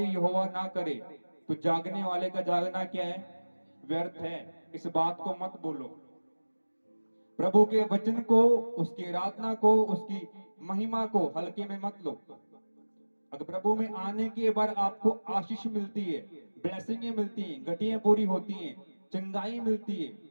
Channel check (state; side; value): inverted; both; correlation -1.00